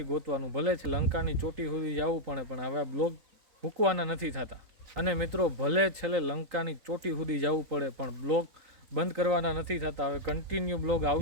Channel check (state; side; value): late; left; 3.9 ms